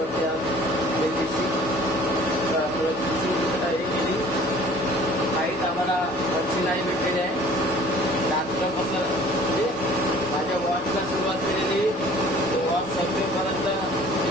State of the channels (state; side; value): normal; both; correlation 0.50